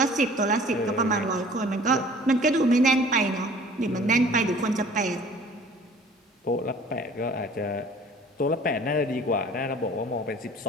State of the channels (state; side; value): normal; both; correlation 0.49